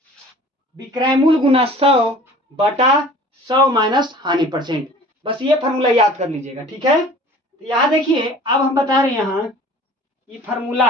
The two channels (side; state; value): both; normal; correlation 0.46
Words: विक्रय मूल्य गुना 100 बटा 100 माइनस हानि परसेंट। बस ये फॉर्मूला याद कर लीजिएगा, ठीक है। तो यहां देखिए, अब हम बता रहे हैं यहां ये फॉर्मूला